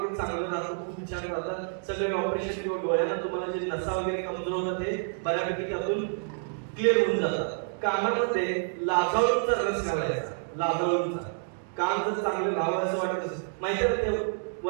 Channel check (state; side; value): silent; left; digital silence